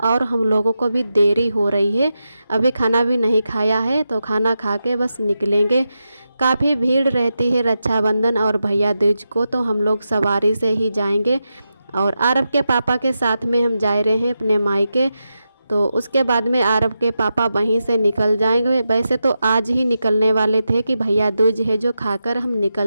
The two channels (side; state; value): both; inverted; correlation -0.89